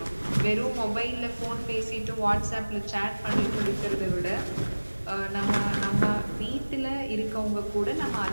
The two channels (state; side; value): inverted; both; correlation -1.00